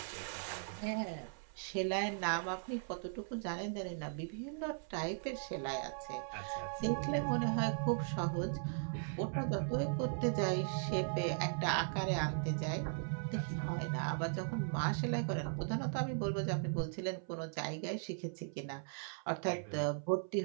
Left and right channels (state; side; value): silent; left; 52 dB below the other